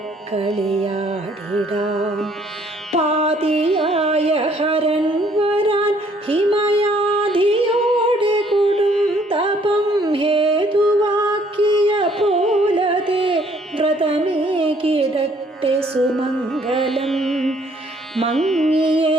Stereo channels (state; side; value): normal; both; correlation 0.63